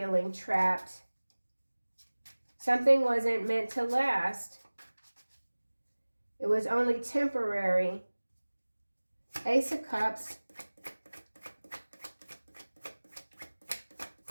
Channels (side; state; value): both; inverted; correlation -1.00